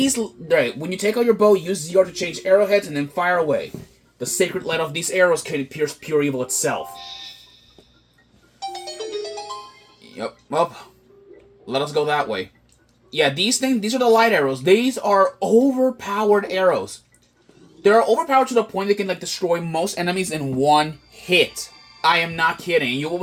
when you take out your bow, use ZR to change arrowheads and then fire away. The sacred light of these arrows can pierce pure evil itself. Yep, well, let us go that way. Yeah, these are the light arrows. These are overpowered arrows. They're overpowered to the point they can, like, destroy most enemies in one hit. I am not kidding. You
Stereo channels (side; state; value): both; identical; correlation 1.00